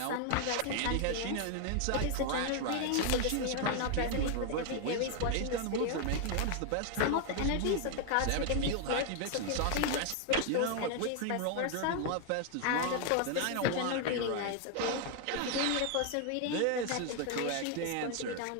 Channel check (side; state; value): both; different; correlation 0.00